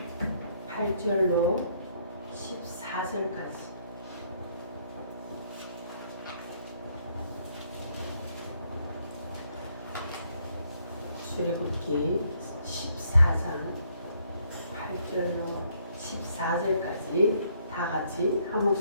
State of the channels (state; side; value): inverted; both; correlation -0.68